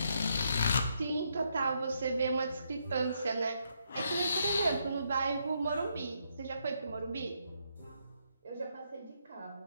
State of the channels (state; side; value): inverted; both; correlation -0.76